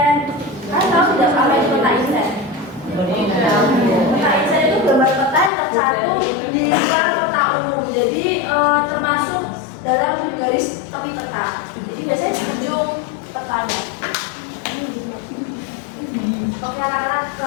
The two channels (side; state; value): right; drops out; at 5.5 s